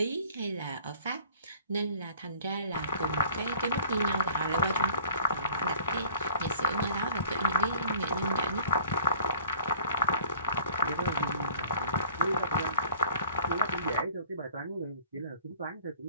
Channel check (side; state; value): both; inverted; correlation -0.49